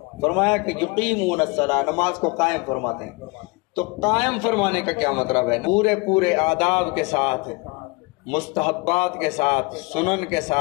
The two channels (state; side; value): quieter; right; 27.3 dB